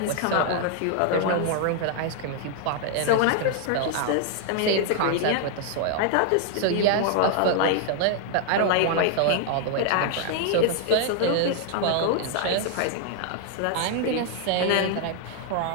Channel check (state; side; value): different; both; correlation 0.00